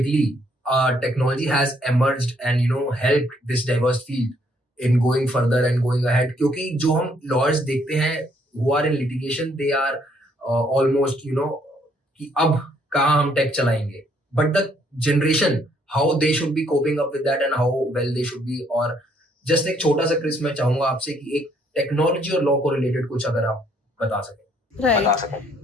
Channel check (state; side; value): normal; both; correlation 0.68